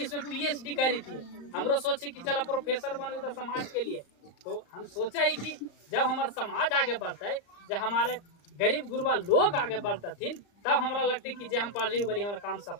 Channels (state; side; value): late; right; 34 ms